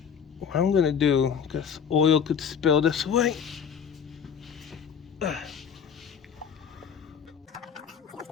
What I'm gonna do, because oil could spill this way.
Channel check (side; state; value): right; quieter; 7.3 dB